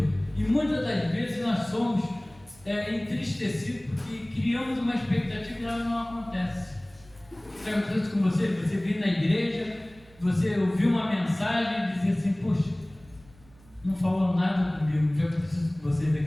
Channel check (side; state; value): right; noise; hum, 26 dB below the sound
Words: E muitas das vezes nós somos entristecidos porque criamos uma expectativa e ela não acontece. Já aconteceu isso com você? Você veio na igreja, você ouviu uma mensagem e dizia assim: poxa, não falou nada comigo. Já aconteceu isso com vocês